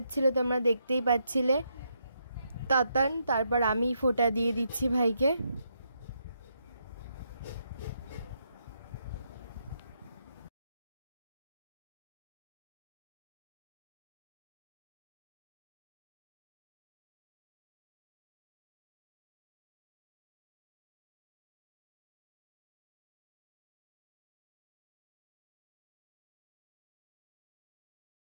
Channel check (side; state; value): both; inverted; correlation -0.78